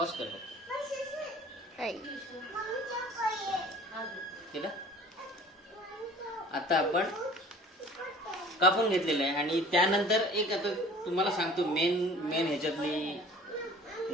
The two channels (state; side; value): normal; both; correlation 0.47